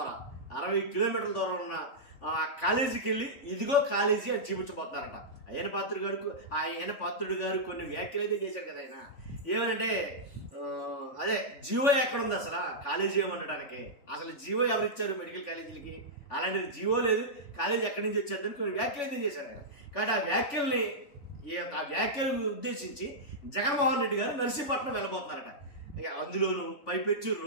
దూరం ఉన్న కాలేజీకి వెళ్ళి ఇదిగో కాలేజీ అని చూపించబోతున్నారట. అయ్యన్న పాత్రుడు గారు కొన్ని వ్యాఖ్యలు అయితే చేశారు కదా. ఆయన ఏమనంటే అదే జీవో ఎక్కడ ఉంది అసలు కాలేజీ ఏమనడానికి, అసలు జీవో ఎవరు ఇచ్చారు మెడికల్ కాలేజీలకి, అలాంటిది జీవో లేదు, కాలేజీ ఎక్కడి నుంచి వచ్చేద్దని కొన్ని వ్యాఖ్యలు అయితే చేశారు ఆయన. కాబట్టి ఆ వ్యాఖ్యలు ఉద్దేశించి జగన్మోహన్ రెడ్డి గారు నర్సీపట్నం వెళ్ళబోతున్నారట. అందులోనూ పైపెచ్చు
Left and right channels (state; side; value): late; right; 3.5 ms